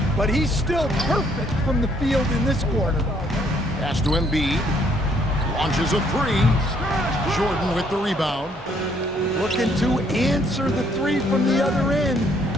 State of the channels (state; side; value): normal; both; correlation 0.67